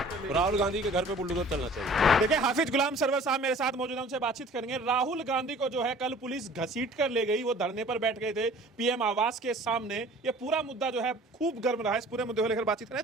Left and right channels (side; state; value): both; normal; correlation 0.48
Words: राहुल गांधी के घर पे बुलडोजर चलना चाहिए। देखिए, हाफिज गुलाम सरवर साहब मेरे साथ मौजूद हैं, उनसे बातचीत करेंगे। राहुल गांधी को जो है कल पुलिस घसीट कर ले गई, वो धरने पर बैठ गए थे पीएम आवास के सामने। ये पूरा मुद्दा जो है खूब गर्म रहा है। इस पूरे मुद्दे को लेकर बातचीत करें,